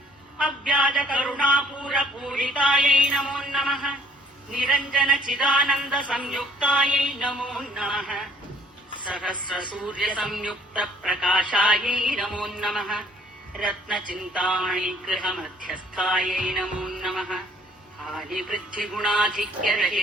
अव्याजकरुणापूरपूरितायै नमो नमः निरञ्जनचिदानन्दसंयुक्तायै नमो नमः सहस्रसूर्यसंयुक्तप्रकाशायै नमो नमः रत्नचिन्तामणिगृहमध्यस्थायै नमो नमः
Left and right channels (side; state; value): both; normal; correlation 0.59